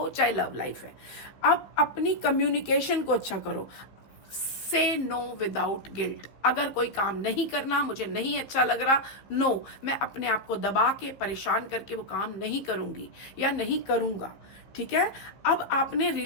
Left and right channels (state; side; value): late; right; 15 ms